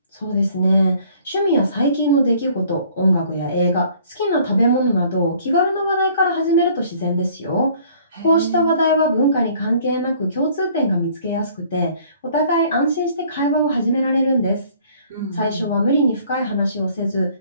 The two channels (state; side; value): inverted; both; correlation -0.56